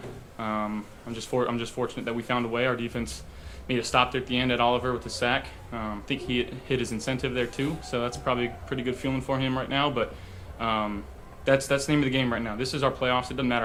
I'm just fortunate that we found a way. Our defense made a stop there at the end at Oliver with the sack. I think he hit his incentive there too, so that's probably a pretty good feeling for him right now. But that's the name of the game right now. This is our playoffs. It doesn't matter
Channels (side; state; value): both; identical; correlation 1.00